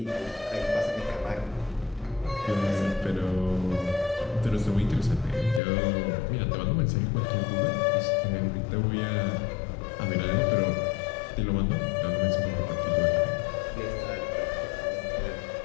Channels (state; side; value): drops out; right; at 5.6 s